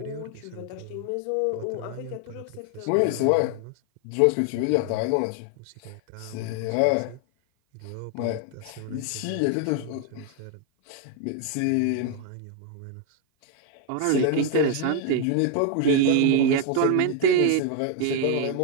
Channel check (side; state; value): both; different; correlation 0.01